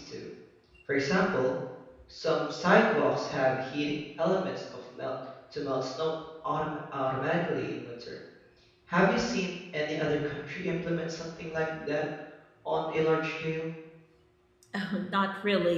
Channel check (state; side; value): identical; both; correlation 1.00